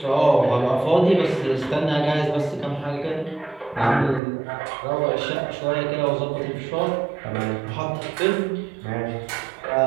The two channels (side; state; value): left; drops out; at 4.2 s